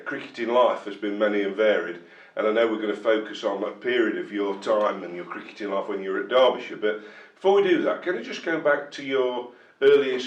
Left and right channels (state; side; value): identical; both; correlation 1.00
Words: cricketing life has been many and varied, and I know we're going to focus on a period of your time and your cricketing life when you were at Derbyshire, but before we do that, can I just go back to your